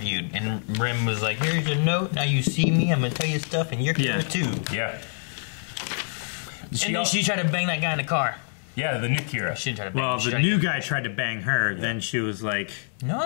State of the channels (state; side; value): silent; right; digital silence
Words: and Rim was like, here's your note, now you see me, I'm gonna tell you stuff, and you're here too. Yeah. And then she tried to bang that guy in the car. Yeah, the new Kira. She didn't try to bang him. Well, the new guy tried to bang her, then she was like...